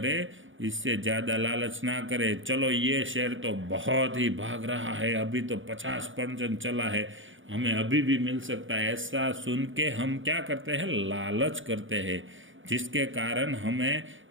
इससे ज़्यादा लालच ना करें। चलो ये शेयर तो बहुत ही भाग रहा है, अभी तो 50% चला है, हमें अभी भी मिल सकता है, ऐसा सुन के हम क्या करते हैं, लालच करते हैं, जिसके कारण हमें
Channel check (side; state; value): left; late; 0.57 ms